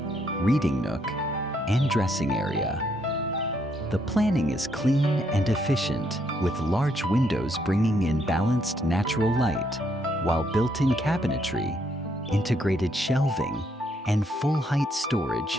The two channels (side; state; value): both; normal; correlation 0.73